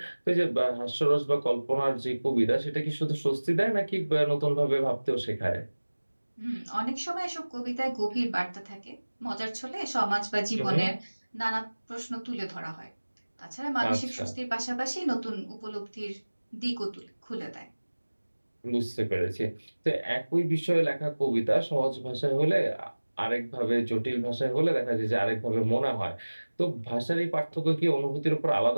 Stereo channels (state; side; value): inverted; both; correlation -1.00